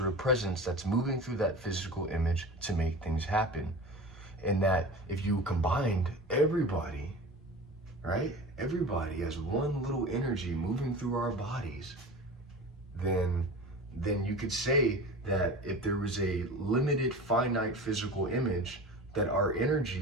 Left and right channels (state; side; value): normal; both; correlation 0.34